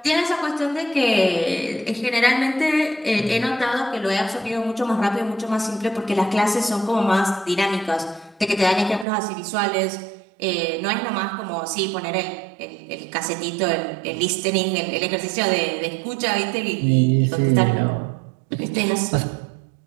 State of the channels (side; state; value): left; drops out; at 9.1 s